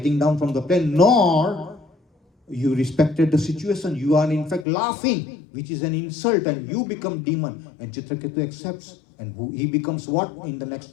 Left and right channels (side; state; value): right; drops out; at 4.7 s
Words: down from the plane, nor you respected the situation. You are in fact laughing, which is an insult, and you become demon. And Chitraketu accepts. And he becomes what in the